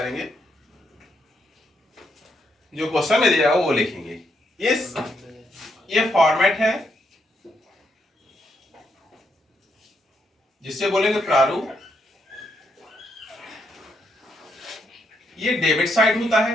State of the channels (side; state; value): both; normal; correlation 0.77